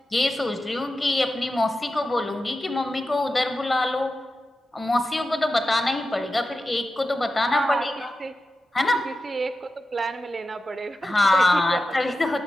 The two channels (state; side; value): normal; both; correlation 0.92